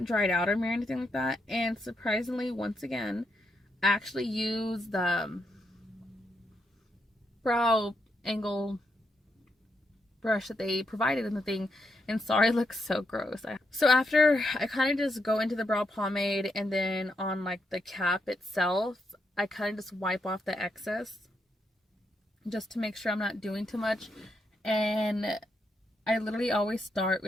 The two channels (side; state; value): both; normal; correlation 0.81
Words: dried out on me or anything like that. And surprisingly, once again, I actually use the brow angle brush that they provided in the thing, and sorry, it looks so gross. So after I kind of just go into the brow pomade, and then on like the cap itself, I kind of just wipe off the excess just to make sure I'm not doing too much. And I literally always start